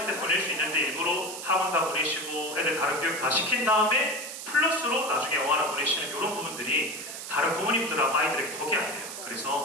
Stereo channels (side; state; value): right; noise; hiss, 9 dB below the sound